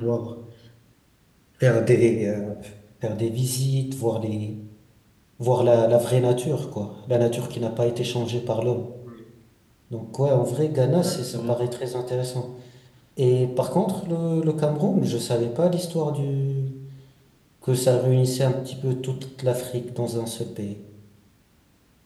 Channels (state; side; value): identical; both; correlation 1.00